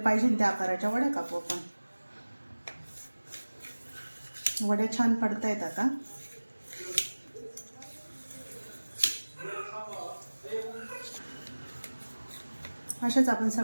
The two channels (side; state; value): both; inverted; correlation -1.00